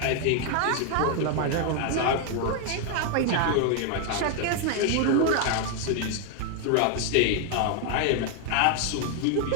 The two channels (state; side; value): different; both; correlation 0.00